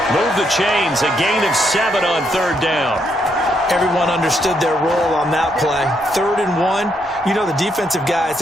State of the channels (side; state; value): both; normal; correlation 0.76